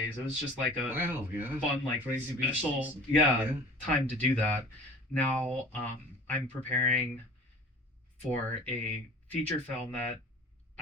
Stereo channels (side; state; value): both; normal; correlation 0.45